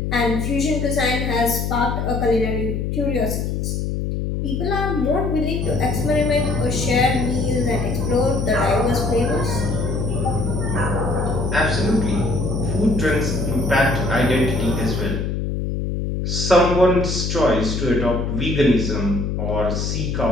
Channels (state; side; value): noise; left; hum, 1 dB below the sound